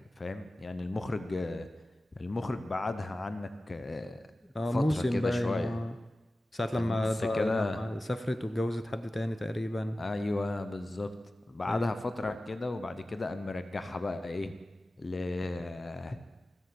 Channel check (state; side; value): normal; both; correlation 0.95